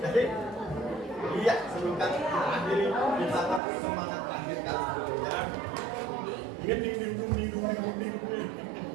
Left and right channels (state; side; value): drops out; left; at 3.6 s